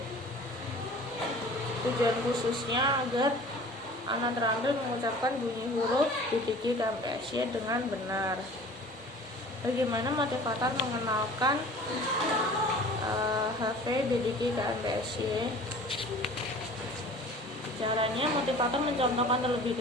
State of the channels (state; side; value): normal; both; correlation 0.44